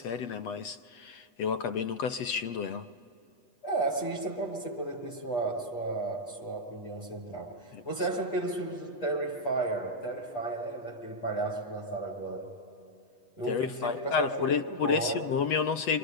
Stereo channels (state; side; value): late; right; 8.2 ms